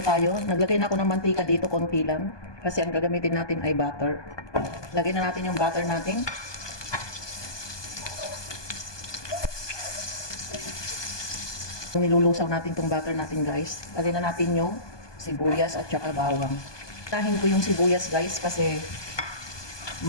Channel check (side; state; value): right; late; 1.2 ms